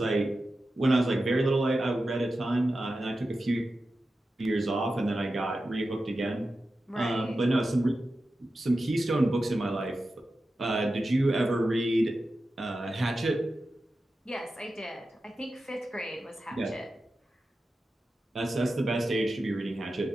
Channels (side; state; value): both; normal; correlation 0.92